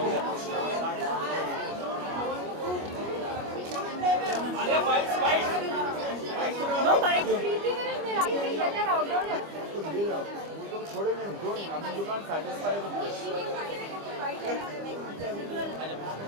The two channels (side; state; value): left; late; 25 ms